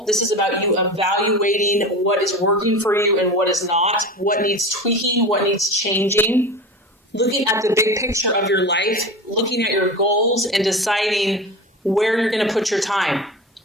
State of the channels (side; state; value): both; normal; correlation 0.29